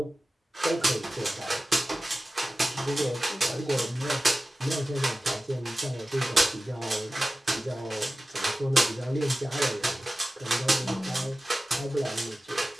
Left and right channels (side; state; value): both; normal; correlation 0.95